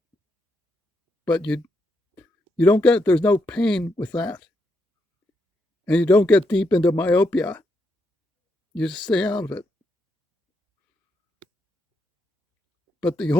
But you don't get, there's no pain with that. And you don't get deep into myopia. You just stay out of it. But the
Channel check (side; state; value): both; normal; correlation 0.80